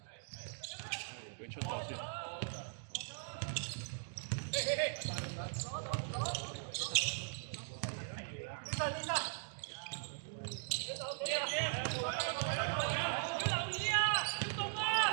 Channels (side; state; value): left; silent; digital silence